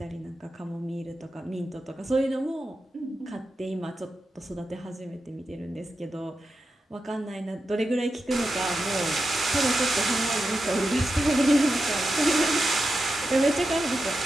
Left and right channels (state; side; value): normal; both; correlation 0.90